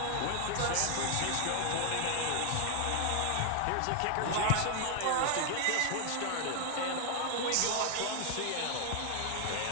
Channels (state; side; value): different; both; correlation 0.00